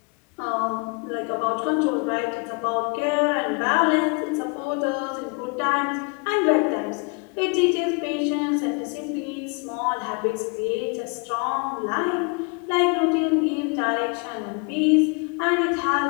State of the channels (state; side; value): quieter; right; 32.9 dB